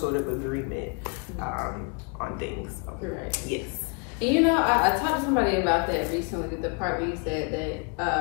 of agreement on things. So, right. Yes. And I talked to somebody about that recently, the part where you said that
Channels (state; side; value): quieter; right; 34.7 dB